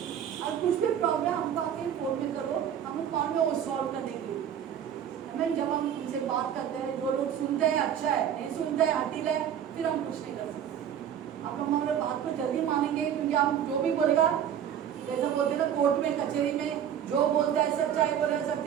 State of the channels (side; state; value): left; quieter; 9.3 dB